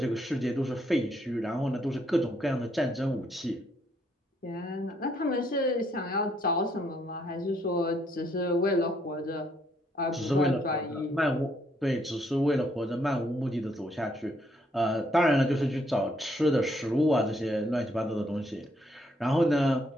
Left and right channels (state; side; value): normal; both; correlation 0.71